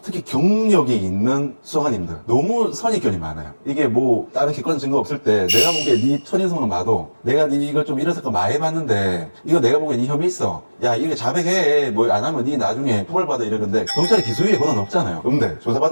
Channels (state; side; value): inverted; both; correlation -1.00